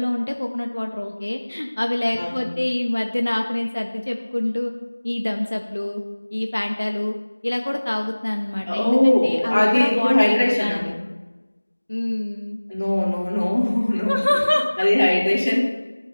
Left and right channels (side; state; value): both; inverted; correlation -1.00